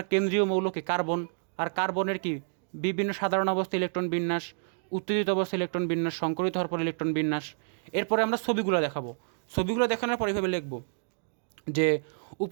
কেন্দ্রীয় মৌলকে কার্বন, আর কার্বনের কি বিভিন্ন সাধারণ অবস্থা ইলেকট্রন বিন্যাস, উত্তেজিত অবস্থা ইলেকট্রন বিন্যাস, সংকরিত হওয়ার পর ইলেকট্রন বিন্যাস। এরপরে আমরা ছবিগুলো দেখাবো, ছবিগুলো দেখানোর পর এইভাবে লিখবো যে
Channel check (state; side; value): silent; left; digital silence